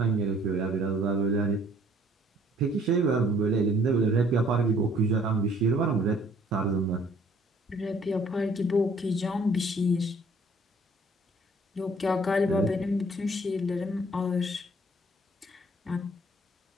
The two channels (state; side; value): normal; both; correlation 0.58